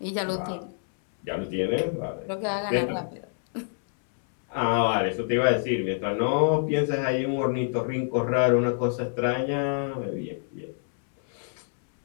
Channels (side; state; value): right; silent; 60 dB below the other